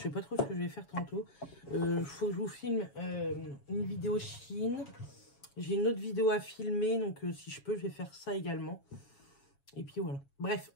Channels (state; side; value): late; right; 7.2 ms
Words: sais pas trop ce que je vais faire tantôt. Faut que je vous filme une vidéo Chine. J'ai une autre vidéo à filmer, donc si je peux, je vais faire ça également. Et puis voilà. Bref,